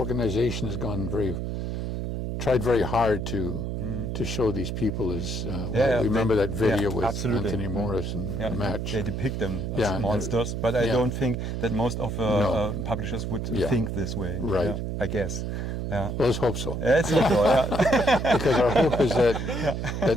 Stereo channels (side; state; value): right; noise; hum, 3 dB below the sound